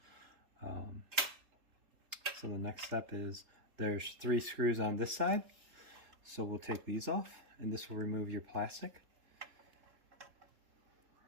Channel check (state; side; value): late; left; 3.8 ms